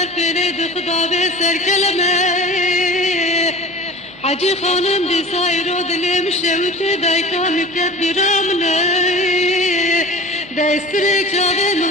pereydi kıdabe serkeleme. Hacı hanım di sayro dilim şevti dayka müket bir amne. Destirek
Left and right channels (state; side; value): normal; both; correlation 0.38